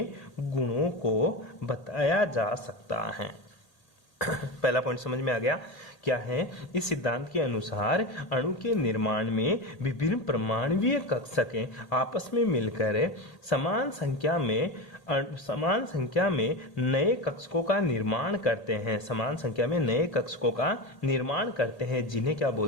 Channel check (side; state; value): right; late; 1.8 ms